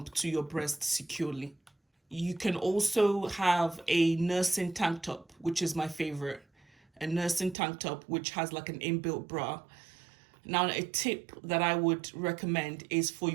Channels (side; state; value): left; drops out; at 7.6 s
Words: to your breast securely. You can also have a nursing tank top, which is my favorite. A nursing tank top, which has like an inbuilt bra. Now, a tip that I would recommend is for